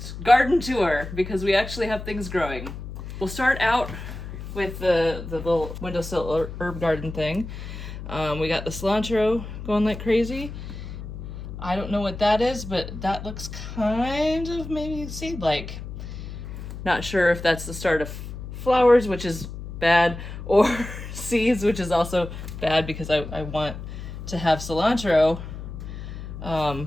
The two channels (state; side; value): noise; left; hum, 9 dB below the sound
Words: garden tour because we actually have things growing. We'll start out with the little windowsill herb garden thing. We got the cilantro going like crazy. I don't know what that is, but that looks kind of maybe seed-like. Not sure if that's the start of flowers, which is bad, or seeds, which is also bad because I want to have cilantro